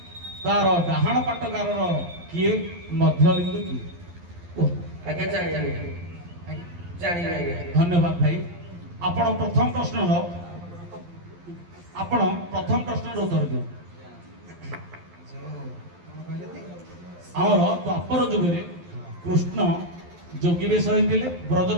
ତାର ଡାହାଣ ପାଟଗାରର କିଏ? ମଧ୍ୟବିନ୍ଦୁ କିଏ? ଆଜ୍ଞା ଜାଣିଲି। ଧନ୍ୟବାଦ ଭାଇ। ଆପଣ ପ୍ରଥମ ପ୍ରଶ୍ନର ଉତ୍ତର ଦିଅନ୍ତୁ। ଆମର ଦ୍ୱାପର ଯୁଗରେ କୃଷ୍ଣ ଯୋଗୀ ବେଶ ହୋଇଥିଲେ,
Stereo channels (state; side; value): late; left; 12 ms